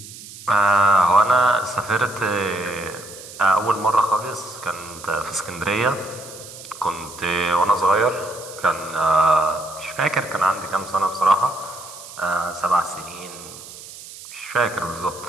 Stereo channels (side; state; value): right; noise; hiss, 15 dB below the sound